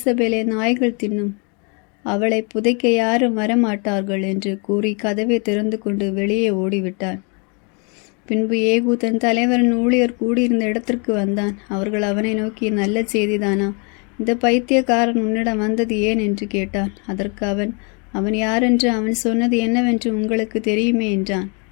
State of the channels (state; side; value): quieter; right; 34.6 dB